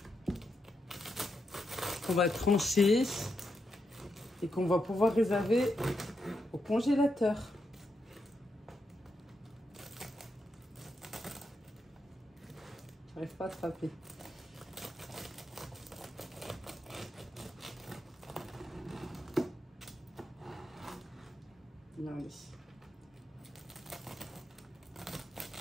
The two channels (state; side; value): normal; both; correlation 0.83